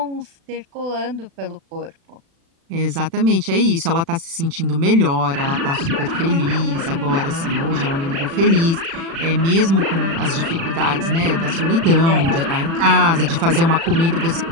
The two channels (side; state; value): left; late; 36 ms